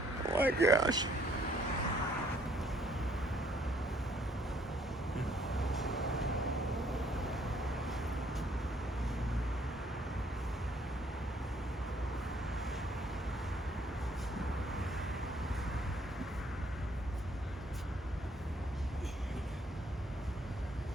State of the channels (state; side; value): normal; both; correlation 0.65